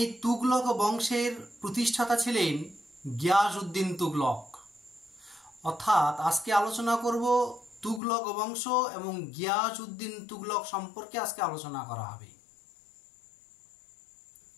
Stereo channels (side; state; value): right; drops out; at 8.0 s